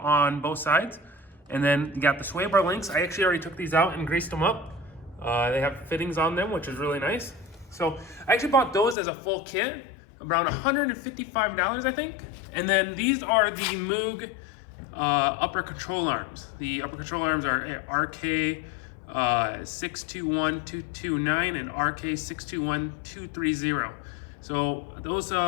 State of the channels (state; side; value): drops out; right; at 9.0 s